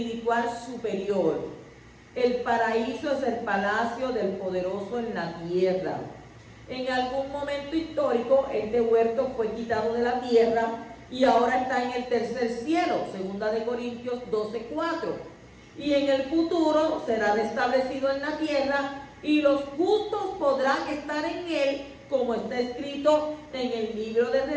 superior. El paraíso es el palacio del poderoso en la tierra. En algún momento histórico, este huerto fue quitado de la tierra y ahora está en el tercer cielo, 2 Corintios 12:4. Y en el futuro será restablecido en la tierra y los justos podrán estar en él, como está escrito en el libro de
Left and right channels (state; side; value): identical; both; correlation 1.00